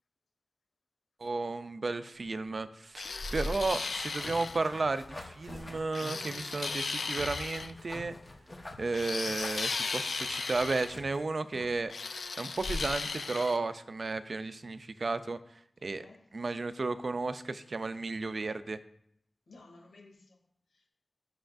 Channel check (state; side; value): normal; both; correlation 0.94